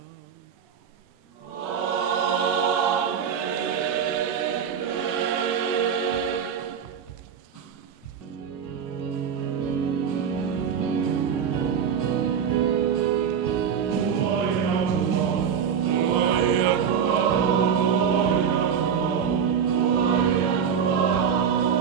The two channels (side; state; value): left; quieter; 7.5 dB